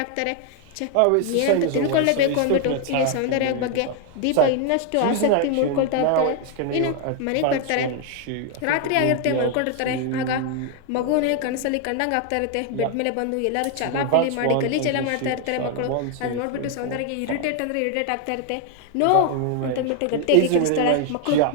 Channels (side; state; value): both; different; correlation 0.00